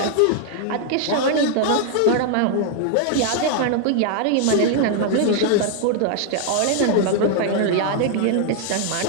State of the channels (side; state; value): both; different; correlation 0.00